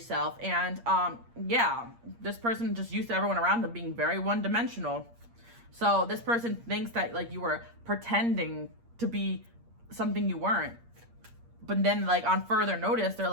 And this person just used to everyone around them being very one-dimensional. So this person thinks that like you were pretending to be something you weren't, but then like on further notice they're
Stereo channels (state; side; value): late; left; 8.6 ms